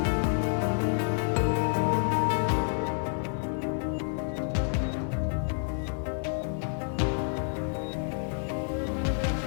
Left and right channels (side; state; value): right; silent; 59 dB below the other